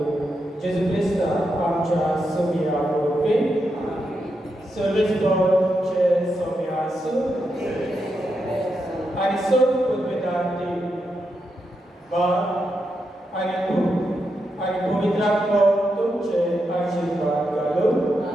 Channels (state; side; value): normal; both; correlation 0.85